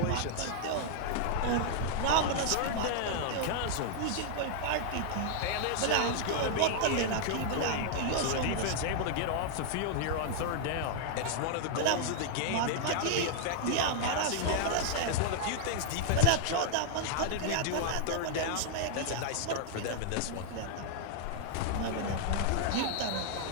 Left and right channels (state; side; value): different; both; correlation -0.01